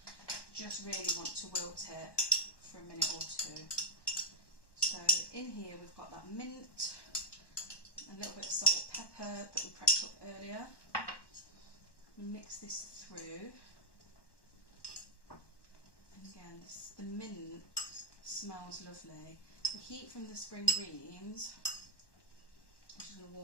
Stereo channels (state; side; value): late; right; 1.1 ms